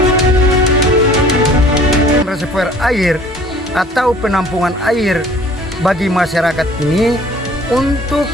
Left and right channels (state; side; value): normal; both; correlation 0.51